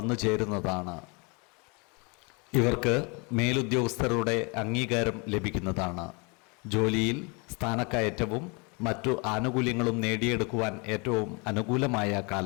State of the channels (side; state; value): right; quieter; 31.3 dB